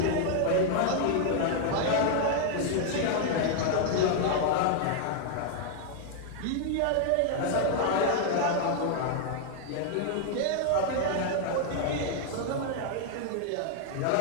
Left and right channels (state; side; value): different; both; correlation 0.00